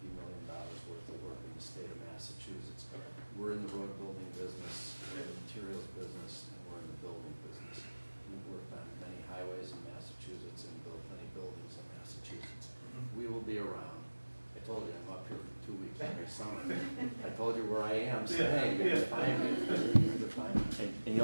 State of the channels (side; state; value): both; inverted; correlation -1.00